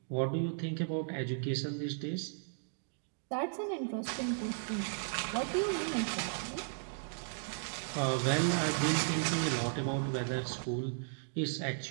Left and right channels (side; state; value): left; silent; digital silence